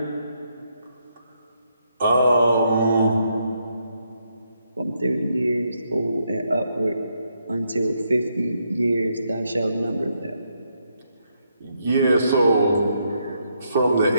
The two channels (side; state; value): both; inverted; correlation -0.77